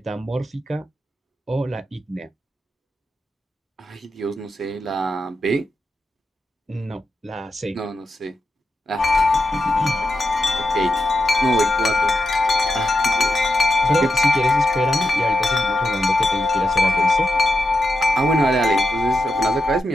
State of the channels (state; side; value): normal; both; correlation 0.87